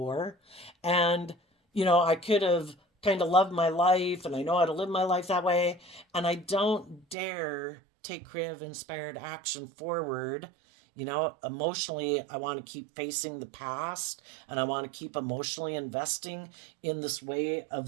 And, I could have kind of loved my life and I know how to live my life that way. And I don't dare take creative inspired action forward. Emotionally, I want to keep facing the past and I want to keep emotionally investing in this way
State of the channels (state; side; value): drops out; left; at 7.2 s